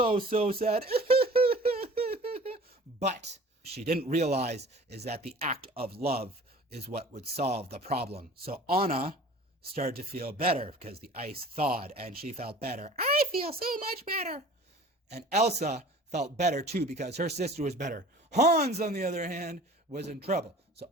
sad. But she didn't realize is that the act of love is what would solve the problem. So Anna started to feel better because the ice thawed and she felt better. I feel so much better. And Elsa felt better too because her sister was better. Hans, on the other hand, was in trouble. So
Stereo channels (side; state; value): both; normal; correlation 0.45